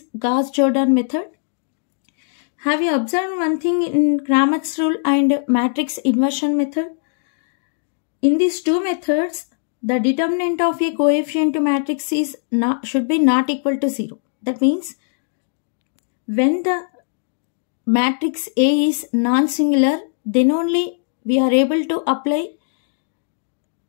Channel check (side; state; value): right; silent; digital silence